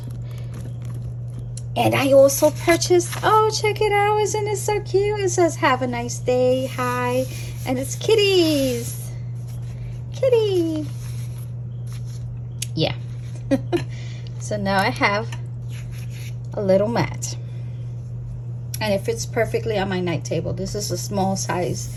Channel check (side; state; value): both; identical; correlation 1.00